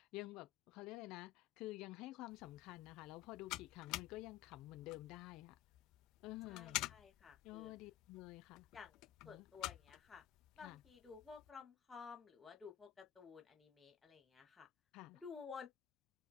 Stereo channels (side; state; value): right; quieter; 12.9 dB